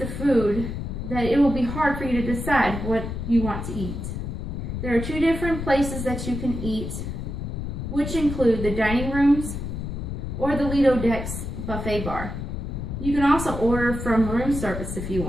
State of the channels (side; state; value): left; noise; rumble, 5 dB below the sound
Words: food that it will be hard for you to decide what you want to eat. There are 2 different places that you can eat, which include the dining rooms or the Lido Decks buffet bar. You can also order from room service if you